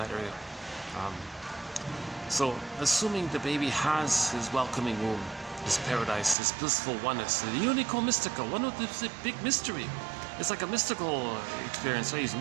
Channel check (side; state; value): left; drops out; at 6.4 s